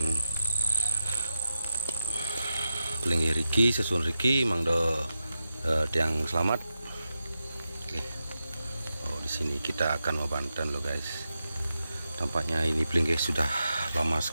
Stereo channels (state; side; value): inverted; both; correlation -0.90